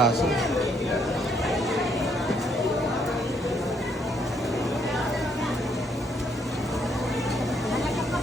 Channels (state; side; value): normal; both; correlation 0.71